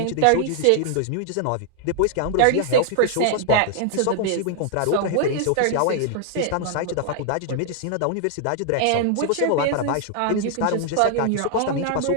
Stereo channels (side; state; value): both; different; correlation 0.00